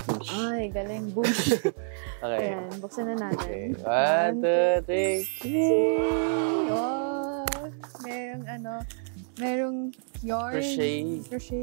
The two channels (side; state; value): left; silent; digital silence